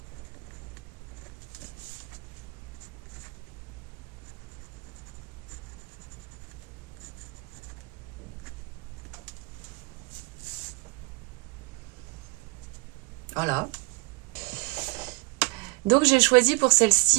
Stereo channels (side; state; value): left; quieter; 28.1 dB